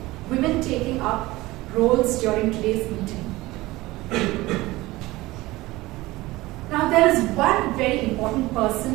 women taking up roles during today's meeting. Now there is one very important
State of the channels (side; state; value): left; quieter; 19.3 dB